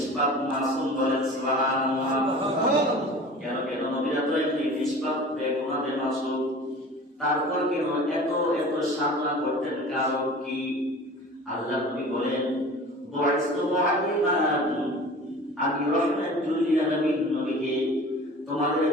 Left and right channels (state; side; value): normal; both; correlation 0.40